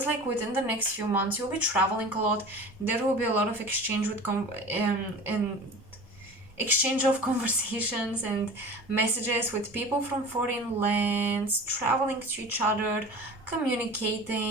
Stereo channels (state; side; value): normal; both; correlation 0.37